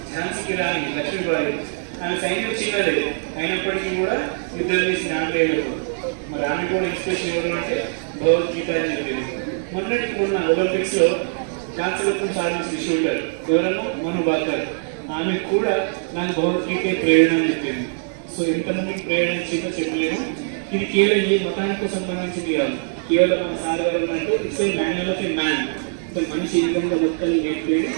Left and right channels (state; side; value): silent; left; 64 dB below the other